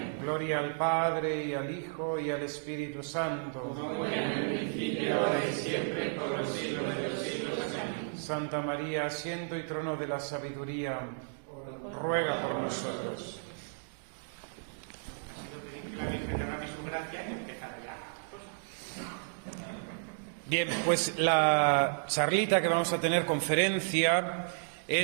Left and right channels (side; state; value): left; silent; digital silence